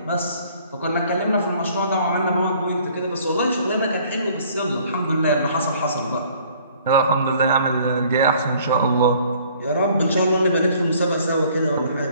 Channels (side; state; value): both; inverted; correlation -0.57